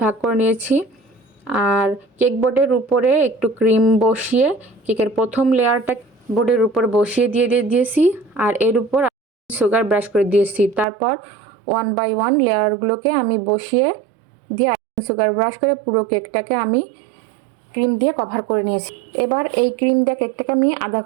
ভাগ করে নিয়েছি। আর কেক বোর্ডের উপরে একটু ক্রিম বসিয়ে কেকের প্রথম লেয়ারটা বোর্ডের উপর বসিয়ে দিয়েছি। আর এর উপর সুগার ব্রাশ করে দিয়েছি। তারপর 1 বাই 1 লেয়ারগুলোকে আমি বসিয়ে দিয়ে সুগার ব্রাশ করে পুরো কেকটাকে আমি ক্রিম দিয়ে কভার করে নিয়েছি। এবার এই ক্রিম দিয়ে কেকটাকে আমি আধা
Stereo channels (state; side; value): drops out; left; at 10.9 s